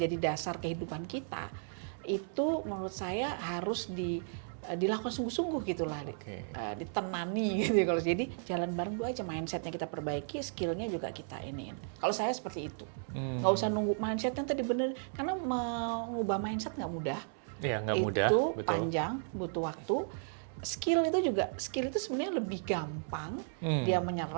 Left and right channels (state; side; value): silent; left; 55 dB below the other